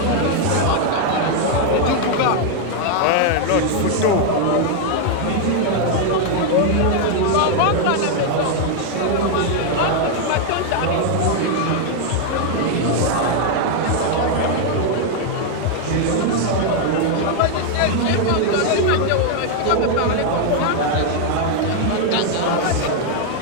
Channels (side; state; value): both; different; correlation 0.00